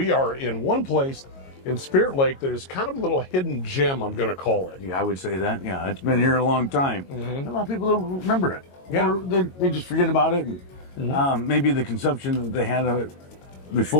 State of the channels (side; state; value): right; late; 22 ms